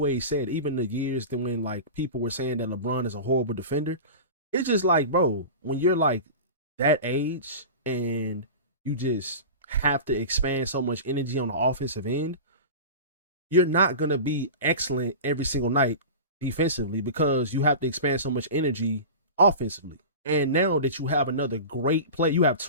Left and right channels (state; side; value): inverted; both; correlation -0.31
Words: said, even the years that when like people were saying that LeBron is a horrible defender, it's just like, bro, when you're like that age and you just have to expand so much energy on the offensive end, you're not gonna be excellent every single night defensively because you have to expand so much energy offensively. And now that you have another great play, you have